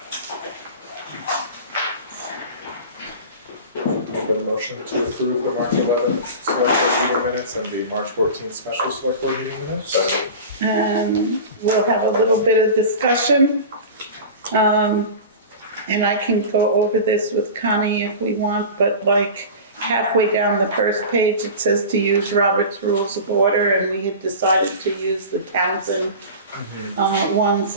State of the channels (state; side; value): inverted; both; correlation -0.32